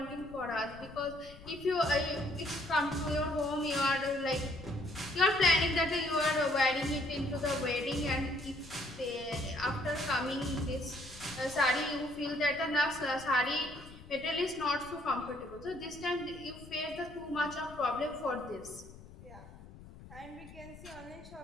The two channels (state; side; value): noise; left; rumble, 18 dB below the sound